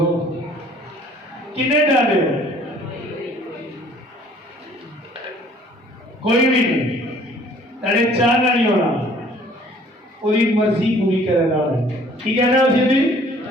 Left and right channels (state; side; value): normal; both; correlation 0.55